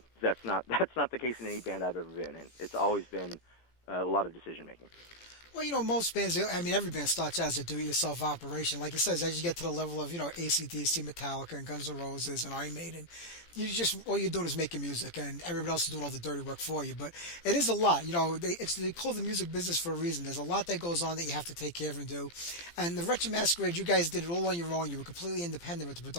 That's not the case in any band I've ever been in. It's always been a lot of decision making. Well, most bands, I mean, every band starts out as a do-it-yourself operation. Like it says, as you get to the level of, AC/DC, Metallica, and Guns N' Roses, and Iron Maiden, all you're doing is making music, and everybody else is doing all the dirty work for you. But it is a lot. They call the music business for a reason. There's a lot that goes on that you have to take care of and do. And the Wretched Masquerade, you guys did it all on your own. You were completely independent with the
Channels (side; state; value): right; late; 17 ms